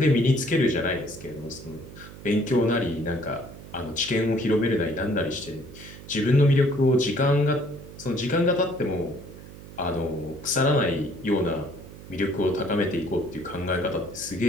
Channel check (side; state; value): right; noise; hum, 16 dB below the sound